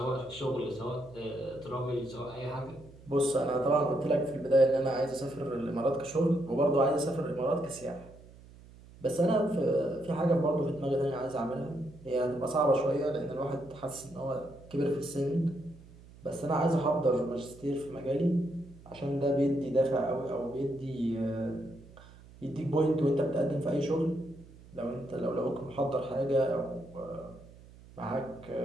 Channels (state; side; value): noise; right; hum, 21 dB below the sound